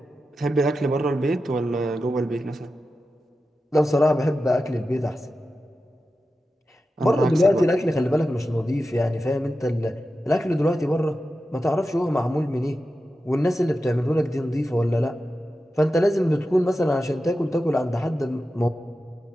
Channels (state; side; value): normal; both; correlation 0.92